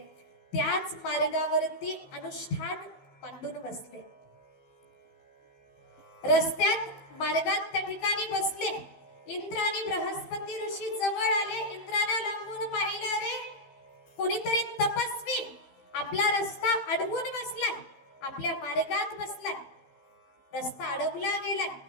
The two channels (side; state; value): right; late; 15 ms